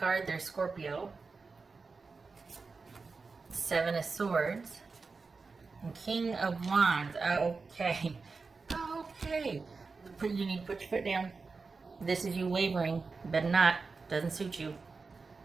there's Scorpio. Seven of Swords. And King of Wands. Okay. Okay. You need to put your foot down. This is you wavering. Better not. Doesn't suit you.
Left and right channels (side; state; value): left; quieter; 4.4 dB